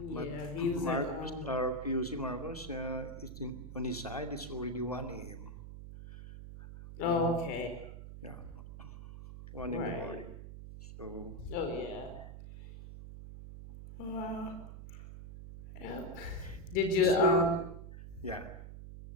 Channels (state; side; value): noise; right; hum, 11 dB below the sound